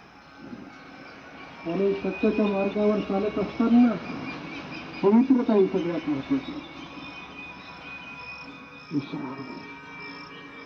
आणि सत्याच्या मार्गावर चालत असताना पवित्रता ही सगळ्यात महत्वाची.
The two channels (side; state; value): both; identical; correlation 1.00